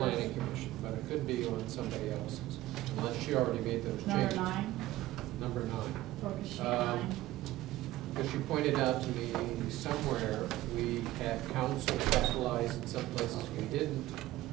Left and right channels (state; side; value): quieter; left; 16.2 dB